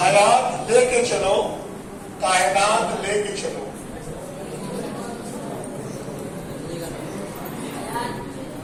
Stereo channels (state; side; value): identical; both; correlation 1.00